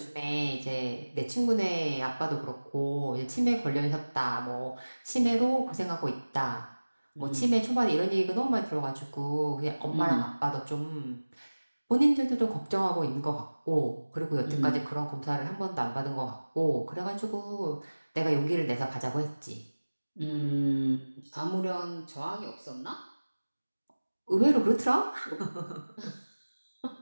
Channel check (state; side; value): inverted; both; correlation -1.00